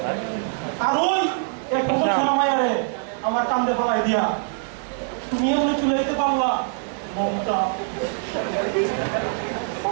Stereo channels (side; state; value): left; silent; 63 dB below the other